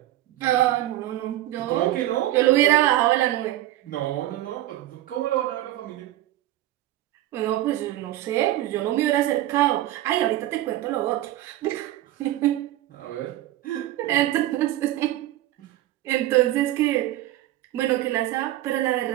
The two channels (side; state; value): left; quieter; 14.7 dB